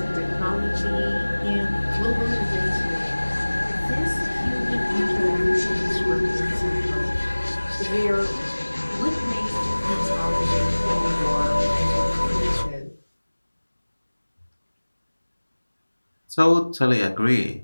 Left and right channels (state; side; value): inverted; both; correlation -1.00